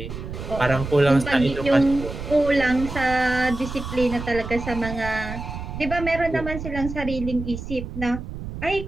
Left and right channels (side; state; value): right; noise; rumble, 8 dB below the sound